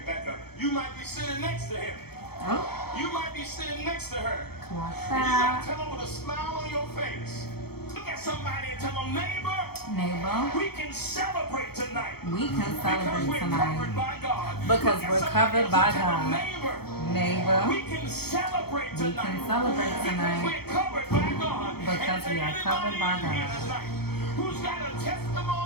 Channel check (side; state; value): right; late; 0.96 ms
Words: back up. You might be sitting next to him. Oh. You might be sitting next to her. Like And you got that. to tell them with a smile on your face. Look at somebody and tell them, neighbor, Neighbor, we can celebrate tonight. we can Because celebrate we're tonight. covered by God. Because we're covered by God. Neighbor, Neighbor, we can celebrate we tonight. can celebrate tonight We're covered by God. because we are covered by God. Who's got a